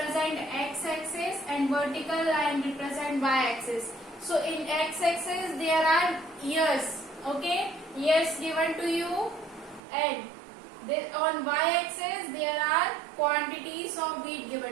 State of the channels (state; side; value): drops out; left; at 9.8 s